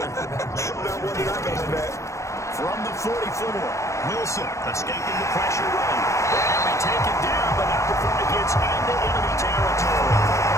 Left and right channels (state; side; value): late; right; 0.15 ms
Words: Not one that I got in that. From the 44, Wilson escaping the pressure run. And we take it down, but not before it gets into enemy territory.